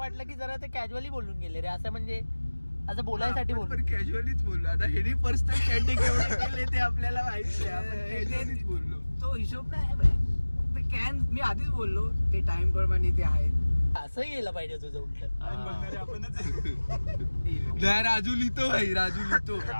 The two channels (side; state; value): both; inverted; correlation -1.00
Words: की जरा ते कॅज्युअली बोलून गेले रे. असं म्हणजे असं बोलायसाठी आपण बोललो. पण कॅज्युअलीच बोललो. आता हेनी पर्सनल चॅटिंग एवढे केले ते आपल्याला माहिती आहे. आपण कॅज्युअलीच बोललो. तो हिशोब नाही भाई. ते कॅन मी आधीच बोललो ते टाइम प्रमाणे ते आहे. असं यायला पाहिजे तुझं उलट. नाही, राजू लिहितो भाई, राजू लिहितो.